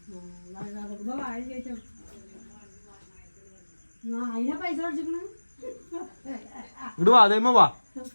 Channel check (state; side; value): inverted; both; correlation -1.00